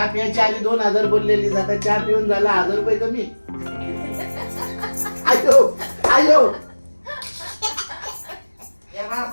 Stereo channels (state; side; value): inverted; both; correlation -1.00